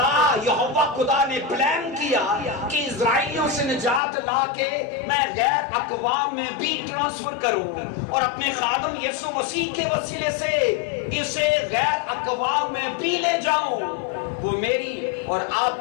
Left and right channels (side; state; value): right; drops out; at 4.0 s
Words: یہوہ خدا نے پلان کیا کہ اسرائیلیوں سے نجات لا کے میں غیر اقوام میں بھی ٹرانسفر کروں، اور اپنے خادم یسوع مسیح کے وسیلے سے اسے غیر اقوام میں بھی لے جاؤں۔ وہ میری اور